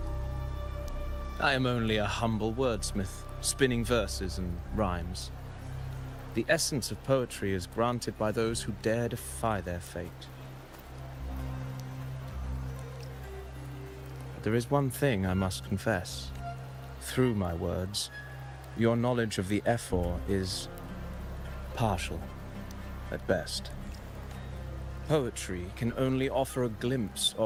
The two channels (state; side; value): identical; both; correlation 1.00